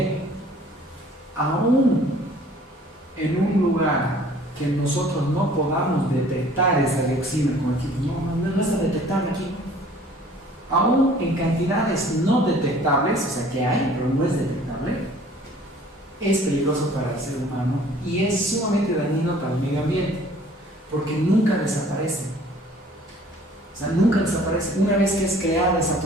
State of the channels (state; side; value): normal; both; correlation 0.53